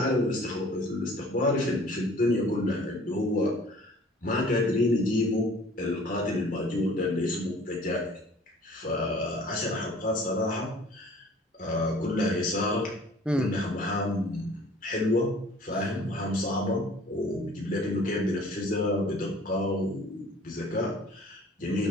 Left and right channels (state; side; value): normal; both; correlation 0.50